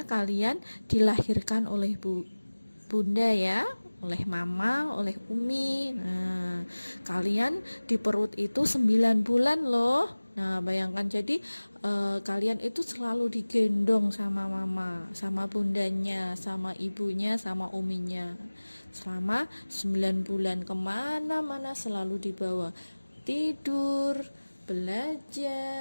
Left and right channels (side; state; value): both; inverted; correlation -1.00